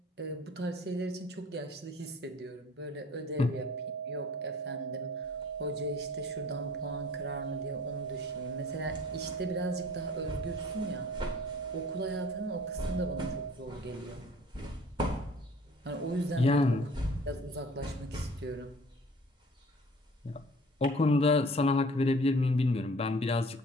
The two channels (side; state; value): both; normal; correlation 0.49